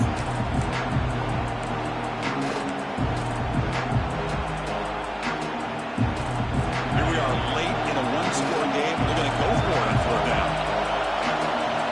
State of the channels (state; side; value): identical; both; correlation 1.00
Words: Here we are late in a one-score game. They're going to go for it on 4th down.